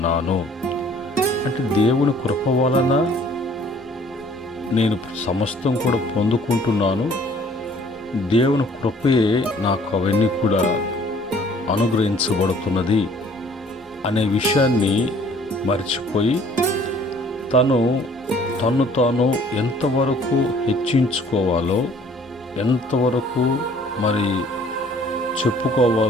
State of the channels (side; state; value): both; normal; correlation 0.56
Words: అంటే దేవుని కృప వలన నేను సమస్తం కూడా పొందుకుంటున్నాను. దేవుని కృపయే నాకు అవన్నీ కూడా అనుగ్రహించబడుతున్నది అనే విషయాన్ని మర్చిపోయి తన్ను తాను ఎంతవరకు హెచ్చించుకోవాలో, ఎంతవరకు మరి